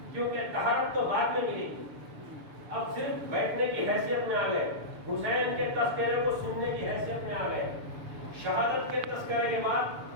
کیونکہ طہارت تو بعد میں ملی. اب صرف بیٹھنے کی حیثیت میں آ گئے. حسین کے تذکرے کو سننے کی حیثیت میں آ گئے. شہادت کے تذکرے کے بعد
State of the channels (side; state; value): left; late; 6.9 ms